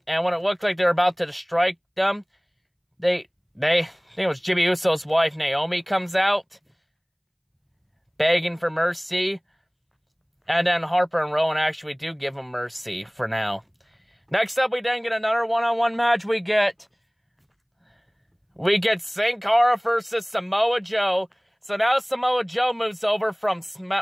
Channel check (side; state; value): both; identical; correlation 1.00